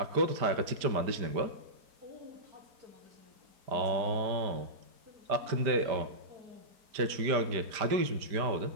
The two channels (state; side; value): late; left; 5.0 ms